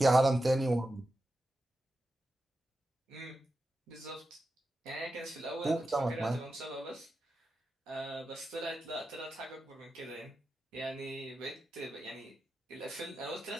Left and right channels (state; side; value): normal; both; correlation 0.91